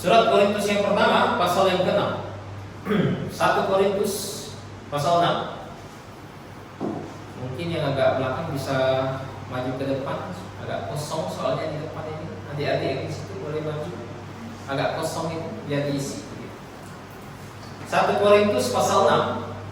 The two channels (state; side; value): identical; both; correlation 1.00